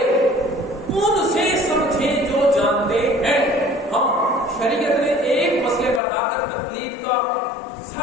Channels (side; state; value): right; drops out; at 6.0 s